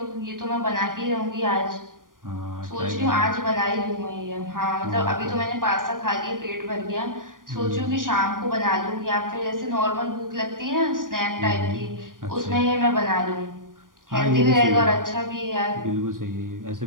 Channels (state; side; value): late; left; 0.90 ms